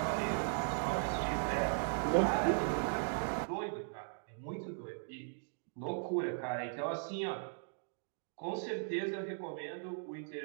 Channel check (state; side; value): silent; left; digital silence